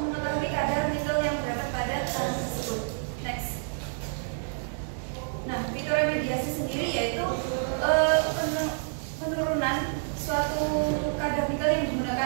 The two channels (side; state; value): left; silent; digital silence